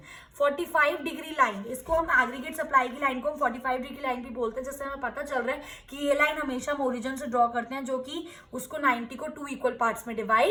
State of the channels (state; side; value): identical; both; correlation 1.00